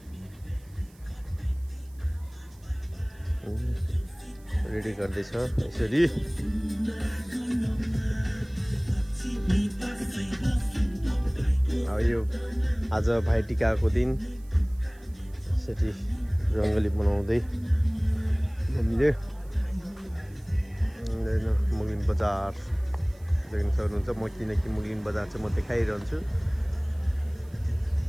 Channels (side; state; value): right; noise; hiss, 29 dB below the sound